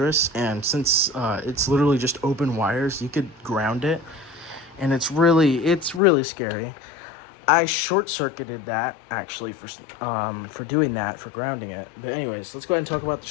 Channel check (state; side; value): drops out; right; at 6.0 s